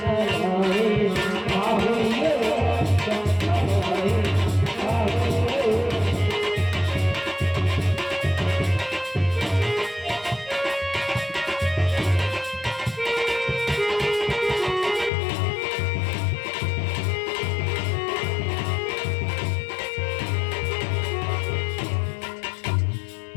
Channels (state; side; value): drops out; right; at 15.1 s